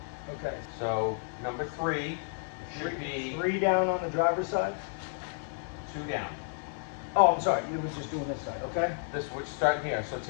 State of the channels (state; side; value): silent; right; 57 dB below the other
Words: Okay. So number 3 should be 3 down on the driver's side? 2 down. Oh, I'm sorry. You were just doing this side, okay? We're starting here. So